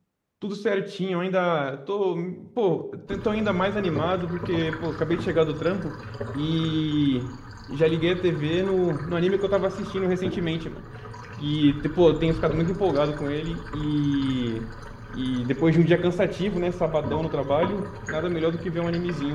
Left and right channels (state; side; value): identical; both; correlation 1.00